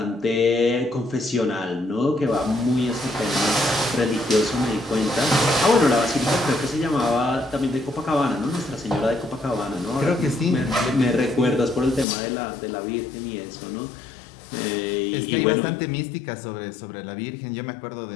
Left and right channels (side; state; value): right; drops out; at 12.1 s